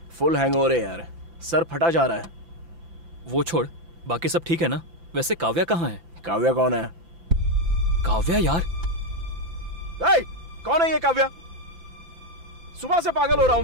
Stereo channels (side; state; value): left; late; 5.9 ms